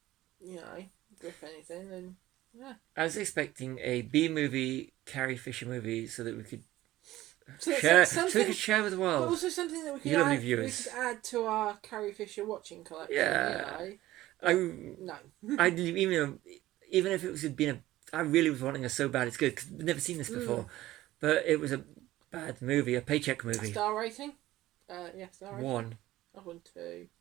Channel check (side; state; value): left; quieter; 15.9 dB